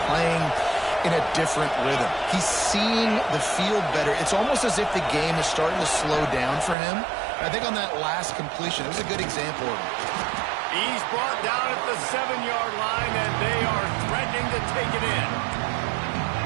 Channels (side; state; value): left; drops out; at 6.8 s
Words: playing in a different rhythm. He's seeing the field better. It's almost as if the game is starting to slow down for him. I think on that last completion, it was a good example of it. He's brought down at the 7-yard line, and they are threatening to take it in.